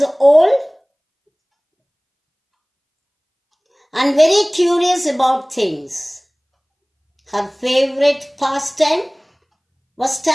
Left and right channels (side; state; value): both; identical; correlation 1.00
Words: old and very curious about things. Her favorite pastime was